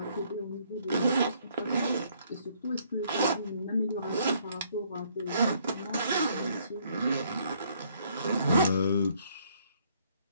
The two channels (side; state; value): both; inverted; correlation -0.66